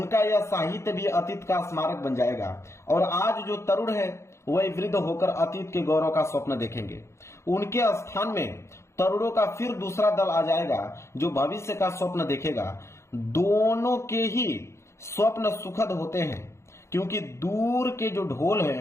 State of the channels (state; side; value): late; right; 0.13 ms